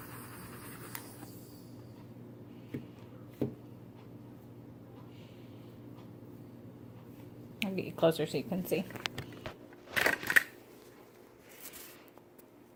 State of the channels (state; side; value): identical; both; correlation 1.00